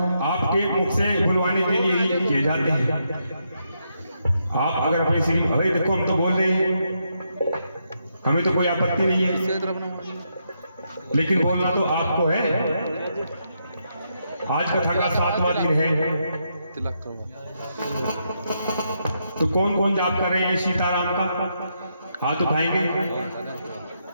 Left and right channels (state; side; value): inverted; both; correlation -0.80